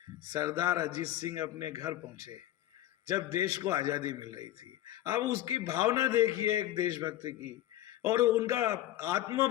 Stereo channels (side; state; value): right; quieter; 13.7 dB